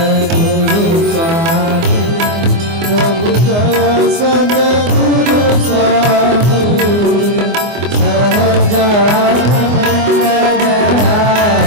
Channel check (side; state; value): left; late; 24 ms